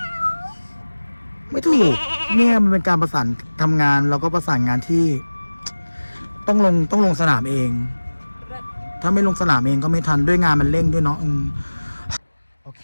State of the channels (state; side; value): inverted; both; correlation -1.00